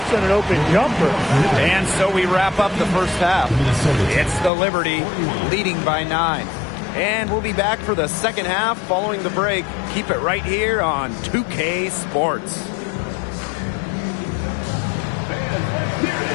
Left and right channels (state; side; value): drops out; right; at 4.5 s